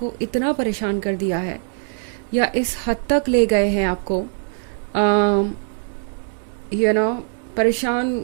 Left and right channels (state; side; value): silent; left; digital silence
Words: इतना परेशान कर दिया है या इस हद तक ले गए हैं आपको